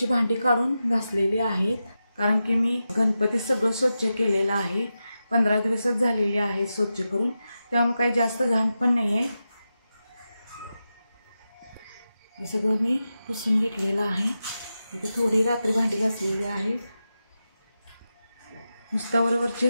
भांडी काढून घासलेली आहेत, कारण की मी गणपती सगळं स्वच्छ केलेलं आहे। 15 दिवसच झालेले आहेत स्वच्छ करून, त्यामुळे काही जास्त घाण पण नाही आहे। हे सगळं मी पुसून घेतलेलं आहे। इथे थोडी रात्री भांडी घासलेली आहे, नुसत्या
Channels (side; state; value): both; inverted; correlation -0.91